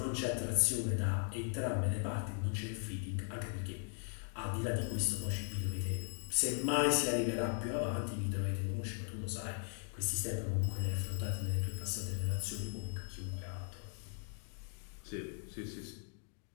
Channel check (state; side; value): silent; right; 52 dB below the other